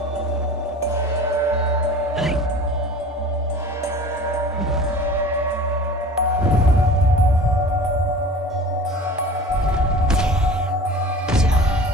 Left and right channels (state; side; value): normal; both; correlation 0.40